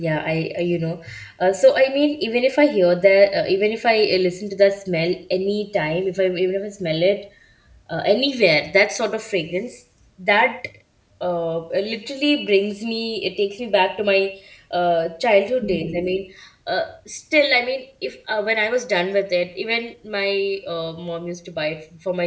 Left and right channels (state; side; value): identical; both; correlation 1.00